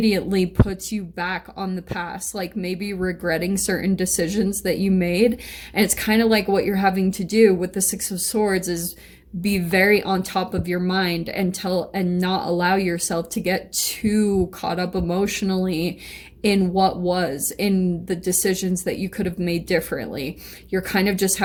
puts you back on the past, like maybe regretting certain decisions that you made. And it's kind of like what you're having to do with the Six of Swords is be very on top of your mind and not allow yourself to get too caught up emotionally in what was, in the decisions that you could have made differently. You're kind of just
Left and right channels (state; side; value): identical; both; correlation 1.00